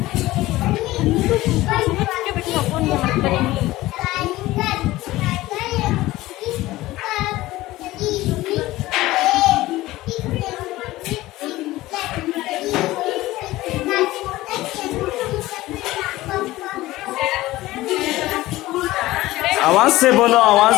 आवाज से बोलो,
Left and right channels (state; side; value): quieter; right; 17.5 dB